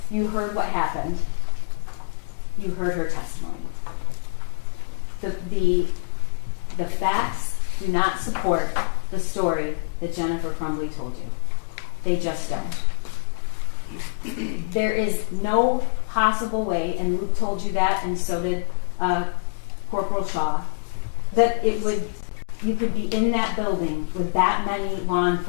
You heard what happened. You heard her testimony. The facts do not support the story that Jennifer Crumbley told you. They just don't. There is no possible way, and Luke told you that, and so did Corporal Shaw, that you could be in that building with that many law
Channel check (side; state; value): right; silent; digital silence